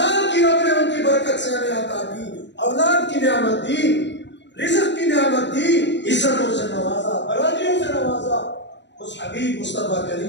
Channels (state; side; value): late; right; 0.52 ms